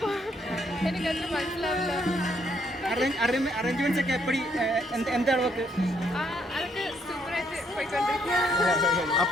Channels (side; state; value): both; normal; correlation 0.71